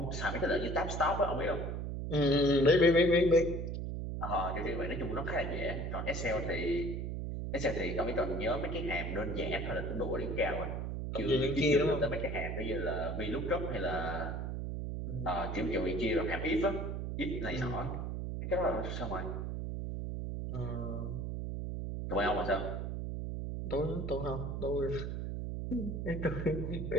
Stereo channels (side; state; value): right; noise; hum, 3 dB below the sound